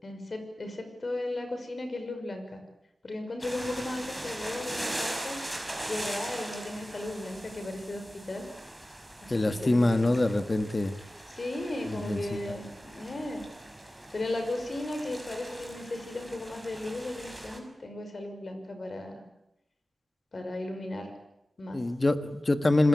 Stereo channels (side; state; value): both; normal; correlation 0.96